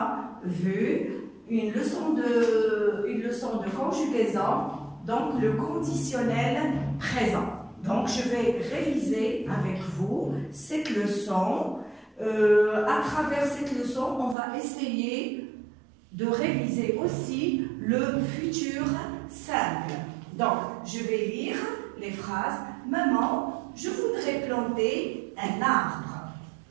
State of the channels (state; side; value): drops out; left; at 14.4 s